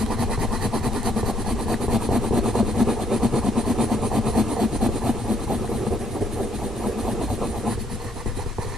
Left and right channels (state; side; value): normal; both; correlation 0.70